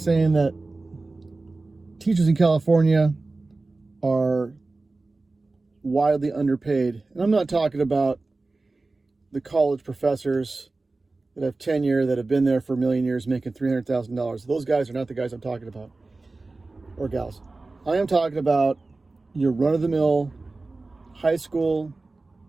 that teachers in California are widely underpaid. And I'm not talking about the college professors that have tenure, that have been there for a million years making $300,000. Those guys are not the guys I'm talking about, or gals. I am talking about your run-of-the-mill high school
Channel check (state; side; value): quieter; left; 3.4 dB